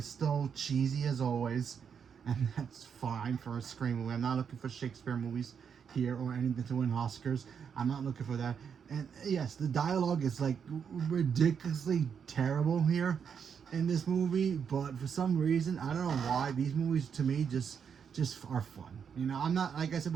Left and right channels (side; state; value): left; quieter; 7.1 dB